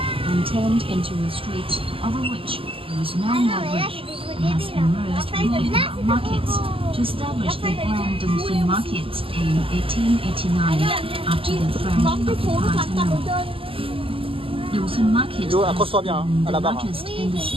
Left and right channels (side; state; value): left; late; 0.26 ms